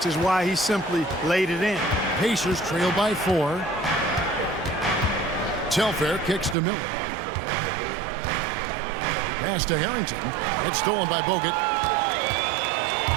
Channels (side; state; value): left; drops out; at 6.6 s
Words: is why he simply laid it in. Pacers trail by 4. Telfair kicks to Miller. Pass to Harrington. It's stolen by Bogut.